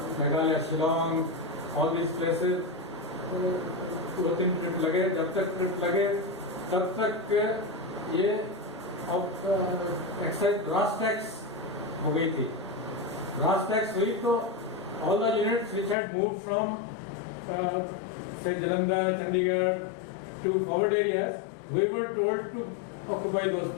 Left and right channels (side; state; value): right; drops out; at 16.0 s